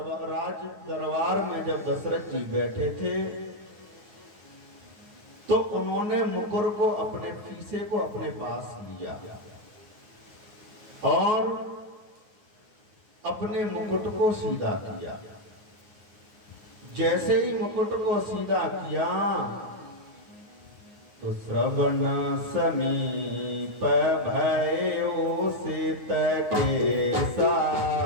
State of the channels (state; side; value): late; left; 9.6 ms